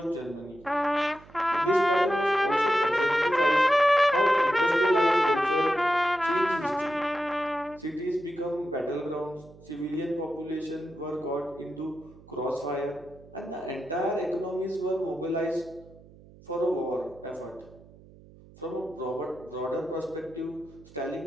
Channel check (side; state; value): right; noise; hum, 23 dB below the sound